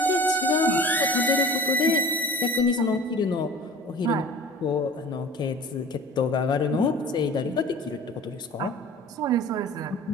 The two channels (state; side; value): normal; both; correlation 0.42